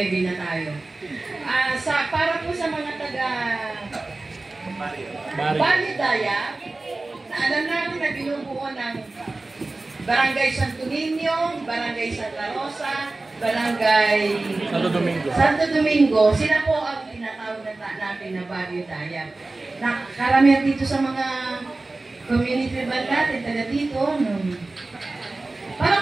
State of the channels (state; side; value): quieter; left; 3.2 dB